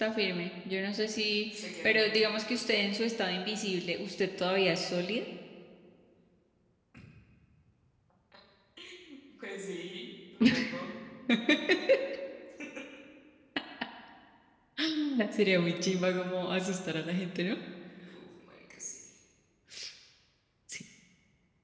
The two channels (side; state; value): both; identical; correlation 1.00